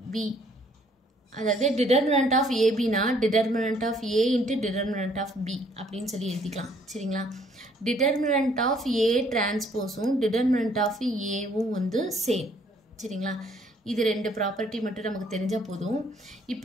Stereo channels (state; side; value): normal; both; correlation 0.63